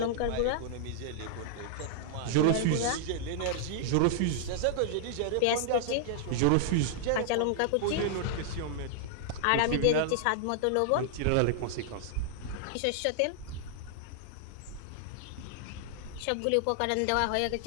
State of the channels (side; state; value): both; different; correlation -0.01